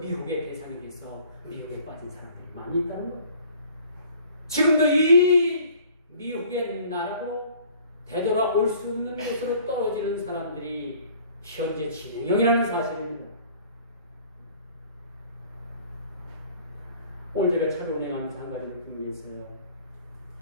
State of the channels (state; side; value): inverted; both; correlation -0.52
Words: 대상에 대해서 미혹에 빠진 사람들이 많이 있다는 거예요. 지금도 이 미혹의 나라고 되돌아올 수 없는 곳으로 떨어지는 사람들이 현재 진행형이라는 사실입니다. 오늘 제가 차를 운행하면서 한 가지 느낀 게 있어요.